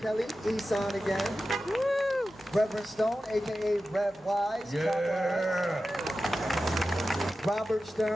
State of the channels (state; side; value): noise; left; hum, 29 dB below the sound